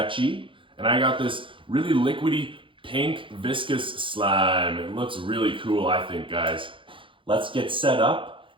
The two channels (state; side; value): late; left; 0.25 ms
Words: and I got this really liquidy pink viscous slime. It looks really cool, I think, guys. Let's get set up